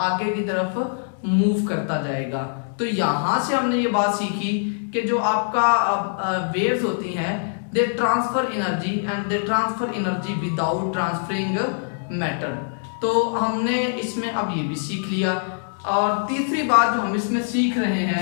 की तरफ मूव करता जाएगा। तो यहां से हमने ये बात सीखी कि जो आपका वेव्स होती हैं they transfer energy and they transfer energy without transferring matter. तो हमने इसमें अब ये भी सीख लिया। और तीसरी बात जो हम इसमें सीख रहे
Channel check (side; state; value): right; silent; digital silence